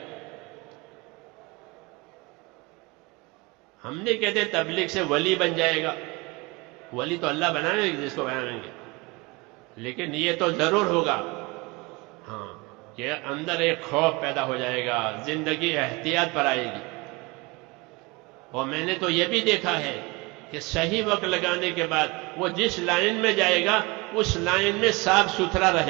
ہم نہیں کہتے تبلیغ سے ولی بن جائے گا، ولی تو اللہ بنائیں گے جس کو بنائیں گے، لیکن یہ تو ضرور ہوگا ہاں کہ اندر ایک خوف پیدا ہو جائے گا، زندگی احتیاط پر آئے گی۔ اور میں نے تو یہ بھی دیکھا ہے کہ صحیح وقت لگانے کے بعد وہ جس لائن میں جائے گا اس لائن میں صاف ستھرا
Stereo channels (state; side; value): quieter; left; 25.1 dB